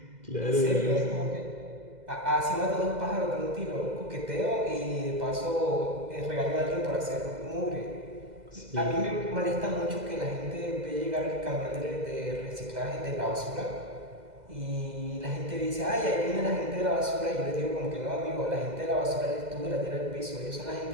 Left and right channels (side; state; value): left; late; 2.0 ms